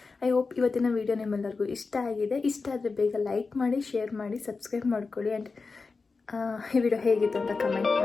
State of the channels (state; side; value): quieter; right; 4.3 dB